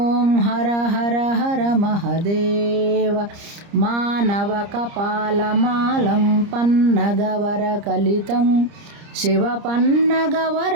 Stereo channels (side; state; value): left; late; 30 ms